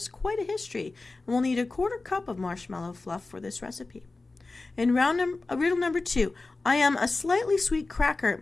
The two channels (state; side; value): quieter; right; 3.5 dB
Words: quite a history, and we'll need a 1/4 cup of marshmallow fluff for this recipe. In riddle number 2, I am a slightly sweet cracker